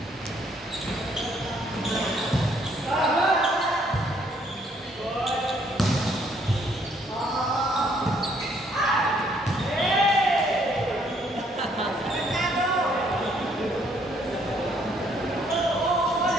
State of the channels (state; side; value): normal; both; correlation 0.67